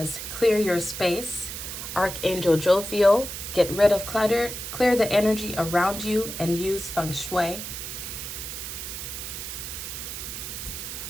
clear your space. Archangel Jophiel, get rid of clutter, clear the energy around you, and use feng shui.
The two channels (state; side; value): noise; right; hiss, 7 dB below the sound